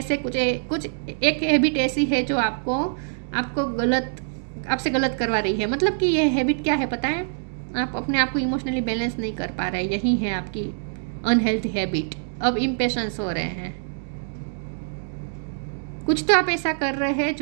से कुछ एक habit ऐसी है जो आपको आपसे गलत करवा रही है। मतलब कि ये हैबिट क्या है पता है? आप अपने आप को इमोशनली बैलेंस नहीं कर पा रहे, यही है आपकी अनहेल्थी हैबिट। अब इम्पेशंस हो रहे हैं, कुछ तो आप ऐसा कर रहे हैं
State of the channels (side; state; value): left; silent; digital silence